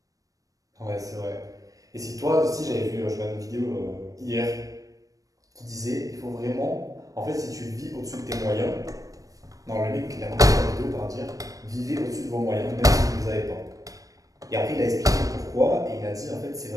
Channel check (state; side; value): late; left; 0.16 ms